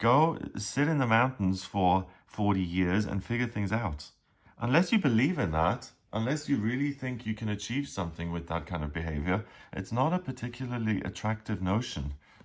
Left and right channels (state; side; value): identical; both; correlation 1.00